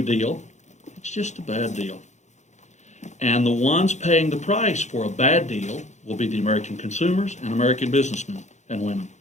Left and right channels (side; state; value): right; late; 0.34 ms